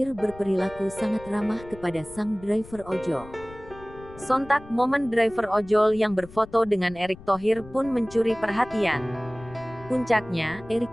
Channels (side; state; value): left; noise; rumble, 19 dB below the sound